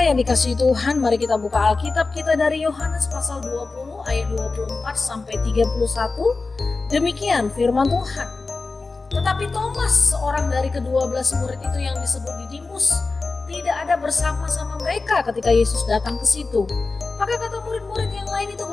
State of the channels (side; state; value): right; quieter; 3.8 dB